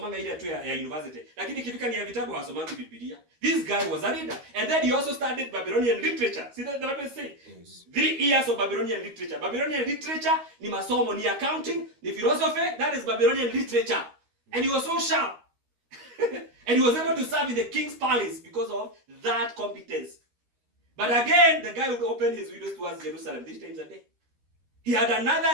ile tu ya university. Lakini ikifika ni ya vitabu hawasomangi Biblia. This guy was a reader. And then he also studied Babylonian literature. See that the Bible say? 3 years of Babylonian literature. Babylonian literature ni masomo, ni accounting, ni philosophy. That is Babylonian literature. And he was so sharp. And he was able to serve in the king's palace because of that competence. But again, the guy would open his windows towards Jerusalem 3 times a day. He had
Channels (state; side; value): late; left; 13 ms